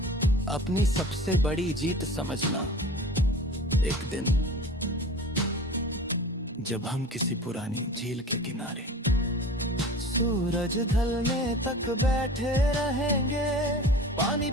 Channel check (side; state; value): both; normal; correlation 0.39